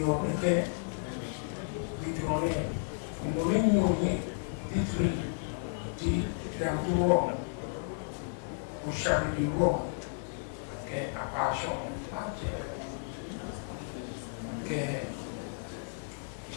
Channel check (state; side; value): silent; right; digital silence